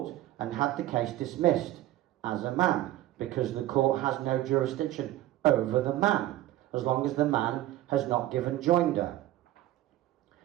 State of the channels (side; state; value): left; quieter; 15.0 dB